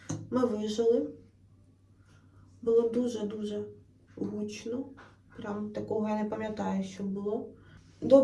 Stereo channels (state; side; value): identical; both; correlation 1.00